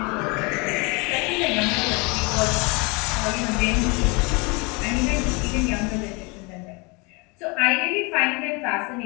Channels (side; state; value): right; quieter; 29.1 dB